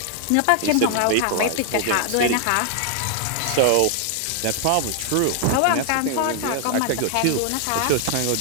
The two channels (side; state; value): both; different; correlation 0.00